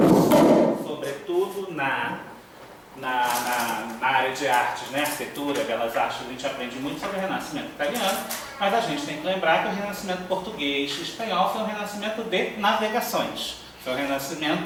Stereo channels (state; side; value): identical; both; correlation 1.00